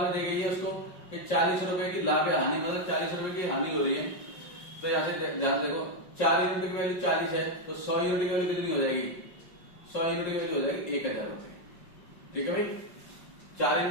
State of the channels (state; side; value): late; right; 5.5 ms